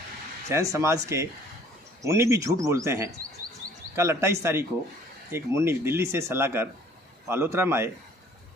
जैन समाज के मुन्नी भी झूठ बोलते हैं। कल 28 तारीख को एक मुन्नी दिल्ली से सलाह कर पालोत्रा में आए,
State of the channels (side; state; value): both; normal; correlation 0.55